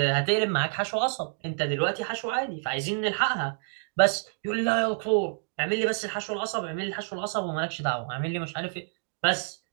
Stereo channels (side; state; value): left; silent; digital silence